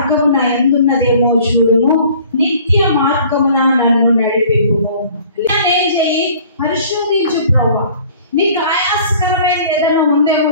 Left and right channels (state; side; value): inverted; both; correlation -0.51